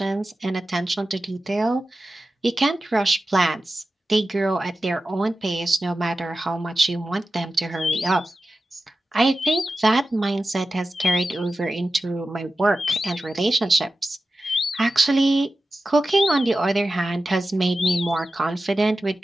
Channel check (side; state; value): both; normal; correlation 0.93